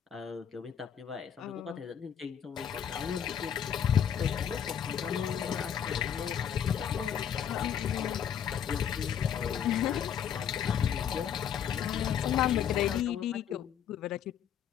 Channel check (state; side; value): quieter; right; 8.7 dB